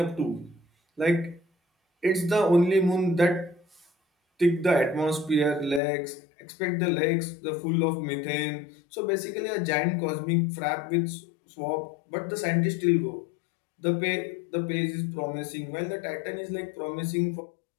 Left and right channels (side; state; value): right; drops out; at 5.8 s